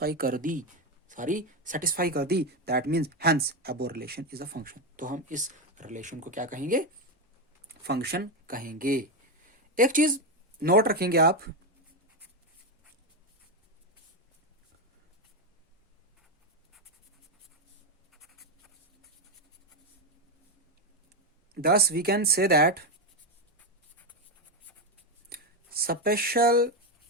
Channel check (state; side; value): normal; both; correlation 0.09